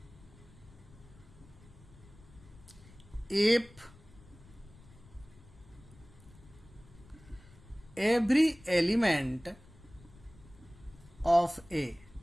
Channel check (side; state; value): left; noise; rumble, 22 dB below the sound